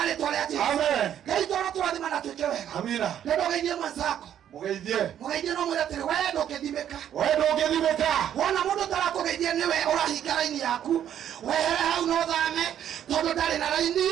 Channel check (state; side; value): quieter; left; 10.2 dB